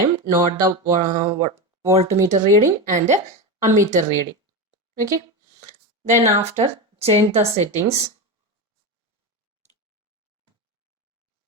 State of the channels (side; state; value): both; normal; correlation 0.18